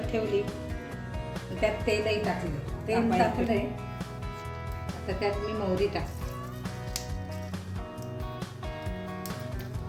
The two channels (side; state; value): both; identical; correlation 1.00